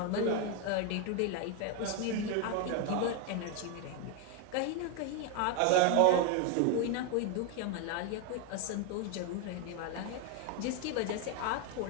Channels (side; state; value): both; different; correlation 0.01